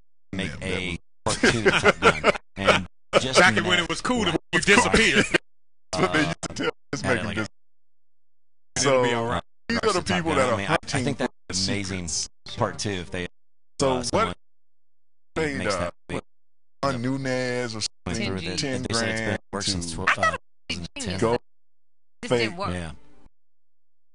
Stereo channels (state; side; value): identical; both; correlation 1.00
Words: make a part 2 to Top Gun, and just back when it was cool to disappear. So they used to tell this making this. So these are the people that are hunting. I think that's amazing. Part 2 if they. So what paid Nunez or something, $10 $10,000 worked since to 2010. go This fake. didn't work. Yeah.